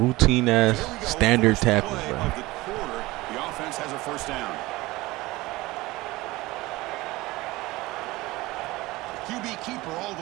ass standard tackles, bro. The offense has a first down. QB keeper all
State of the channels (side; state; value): left; quieter; 20.0 dB